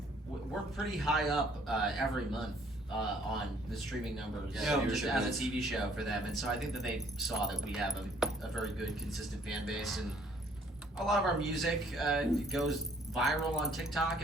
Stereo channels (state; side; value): normal; both; correlation 0.61